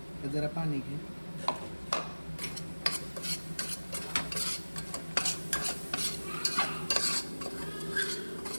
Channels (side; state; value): both; inverted; correlation -1.00